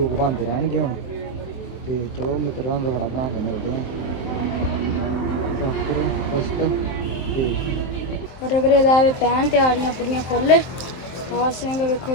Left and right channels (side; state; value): right; late; 23 ms